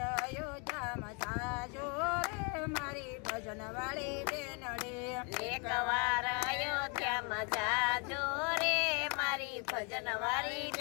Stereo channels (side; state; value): right; quieter; 34.3 dB